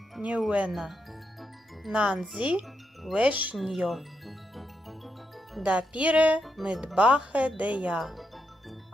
ньюена. Нанзі вешньо. Да піре мидбахе дея.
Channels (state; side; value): normal; both; correlation 0.82